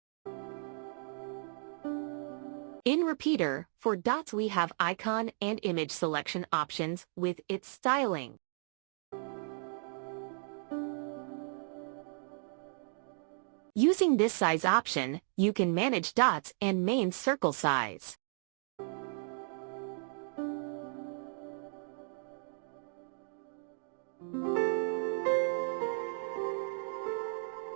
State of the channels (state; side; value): silent; left; 54 dB below the other